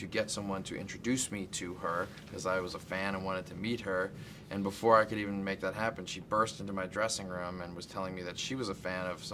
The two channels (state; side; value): identical; both; correlation 1.00